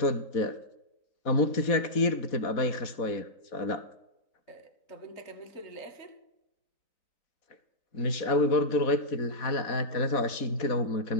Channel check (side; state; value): right; late; 4.1 ms